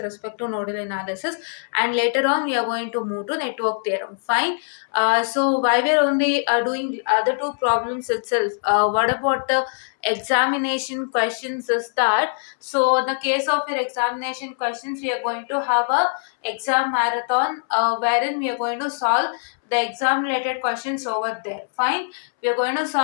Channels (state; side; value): silent; right; 64 dB below the other